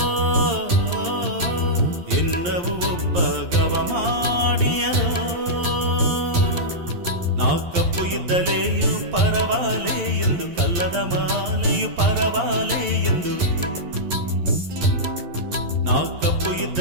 ಎನ್ನವು ಒಬ್ಬ ಗವ ಮಾಡಿಯದೋ ನಾ ಕಪ್ಪು ಇದ್ದಲೆಯು ಪರವಾಲೆ ಎಂದು ಕಲ್ಲದ ಮಾಲೆಯು ಪರವಾಲೆ ಎಂದು ನಾ ಕಪ್ಪು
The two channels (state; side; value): late; left; 11 ms